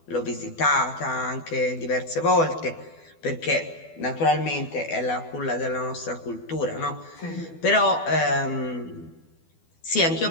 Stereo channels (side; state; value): right; late; 12 ms